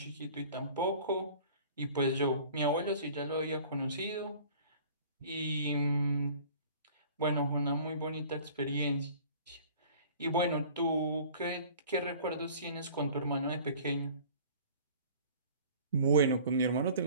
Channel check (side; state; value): both; inverted; correlation -0.46